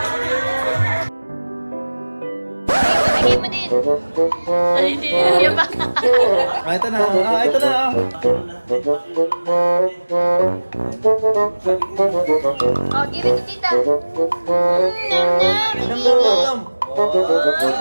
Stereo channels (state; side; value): inverted; both; correlation -1.00